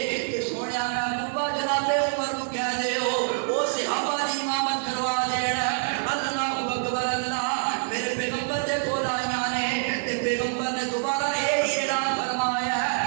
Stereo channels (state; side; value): silent; left; digital silence